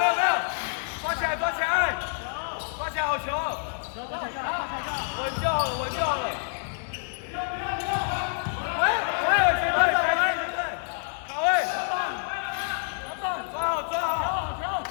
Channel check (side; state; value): right; silent; digital silence